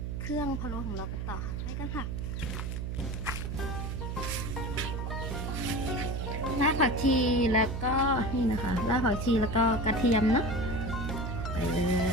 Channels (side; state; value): right; noise; hum, 3 dB below the sound